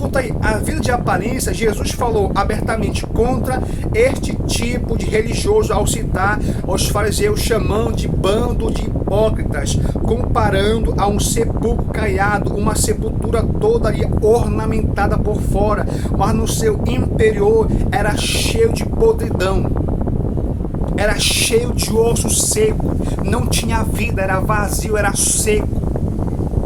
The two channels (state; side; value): identical; both; correlation 1.00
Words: aí, a vida de aparência, Jesus falou abertamente contra este tipo de religioso ao citar os fariseus, chamando de bando de hipócritas, comparando a um sepulcro caiado, uma sepultura toda ali ornamentada por fora, mas no seu interior era cheio de podridão, era cheio de osso seco, não tinha vida, era vazio, era seco.